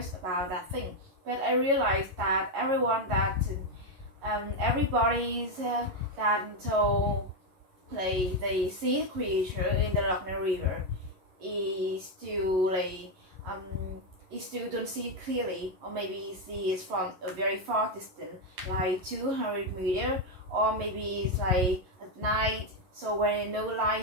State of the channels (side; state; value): left; late; 11 ms